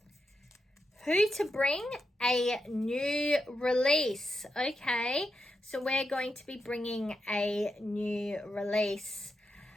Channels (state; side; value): normal; both; correlation 0.86